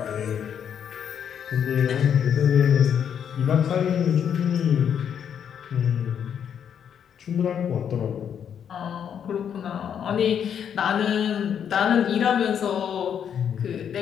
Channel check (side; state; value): right; quieter; 8.4 dB